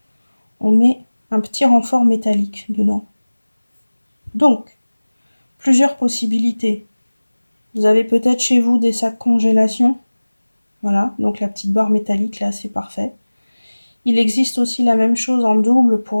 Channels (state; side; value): inverted; both; correlation -1.00